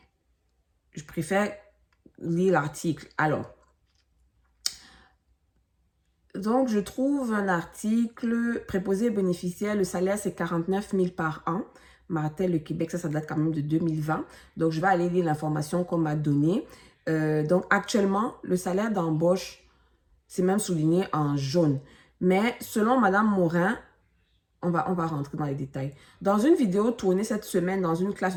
Je préfère lire l'article. Alors, donc je trouve un article préposé bénéficiaire, le salaire c'est 49 000 par an. Martel, le Québec, ça date quand même de 2020. Donc, je vais aller lire l'information qu'on m'a donnée. Donc, actuellement, le salaire d'embauche, c'est même souligné en jaune. Mais selon Madame Morin, on va rentrer dans les détails. Dans une vidéo tournée cette semaine dans une classe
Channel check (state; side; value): identical; both; correlation 1.00